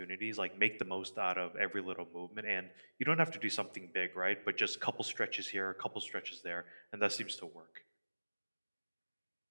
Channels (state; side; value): inverted; both; correlation -1.00